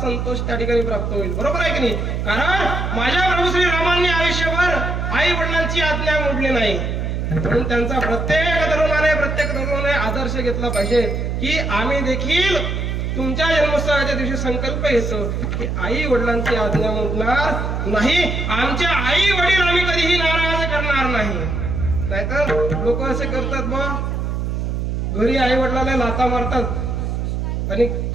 त्या ठिकाणी प्राप्त होईल. बरोबर आहे की नाही? कारण माझ्या प्रभू श्री रामांनी आयुष्यभर आई वडिलांची आज्ञा मोडली नाही, म्हणून त्यांचा प्रत्येक तरुणाने आदर्श घेतला पाहिजे की आम्ही देखील तुमच्या जन्मोत्सवाच्या दिवशी संकल्प घेतो की आई वडिलांची आज्ञा मोडणार नाही, आमच्या आई वडील आम्ही कधीही नाराज करणार नाही. नाहीतर लोक असे करतात बा, घरी आई वडिलांना लाथा मारतात आणि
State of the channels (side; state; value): right; noise; hum, 1 dB below the sound